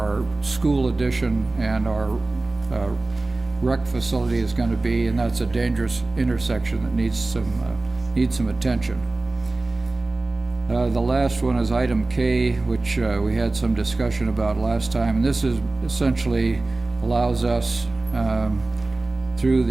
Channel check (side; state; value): left; quieter; 3.1 dB